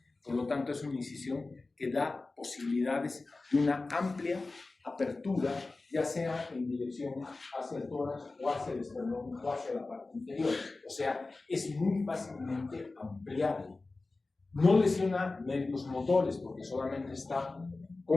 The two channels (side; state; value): right; quieter; 3.4 dB